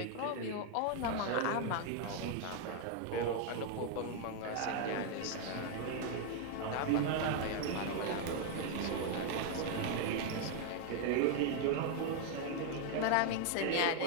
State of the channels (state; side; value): different; both; correlation 0.00